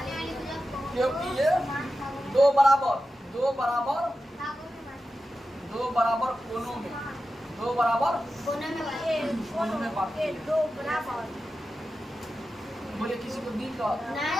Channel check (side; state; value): both; normal; correlation 0.92